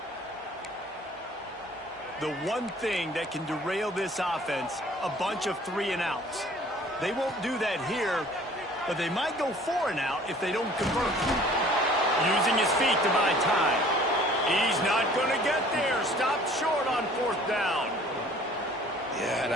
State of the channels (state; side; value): normal; both; correlation 0.52